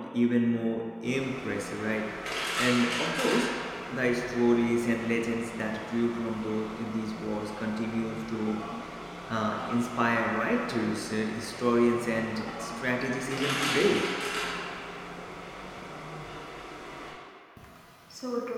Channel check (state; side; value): identical; both; correlation 1.00